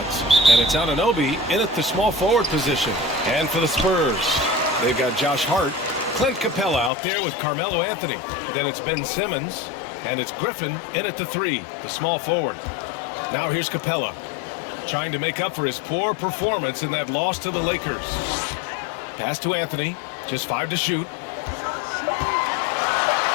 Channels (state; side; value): drops out; right; at 6.9 s